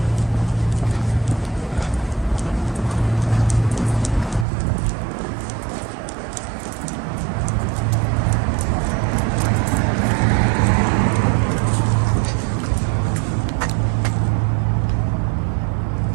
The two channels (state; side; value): drops out; left; at 4.5 s